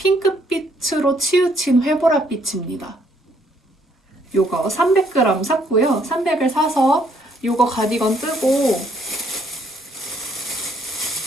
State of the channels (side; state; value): both; normal; correlation 0.67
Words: 치우친 회보랏빛입니다. 요거 300g 샀고요. 300을 사서 요거 가디건 뜨고